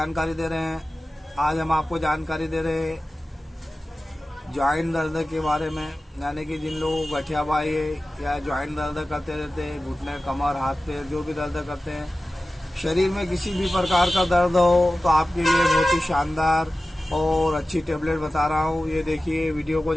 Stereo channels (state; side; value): normal; both; correlation 0.95